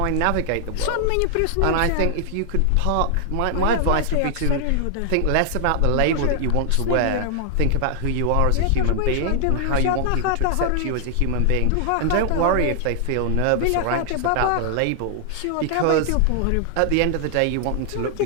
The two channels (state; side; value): different; both; correlation 0.00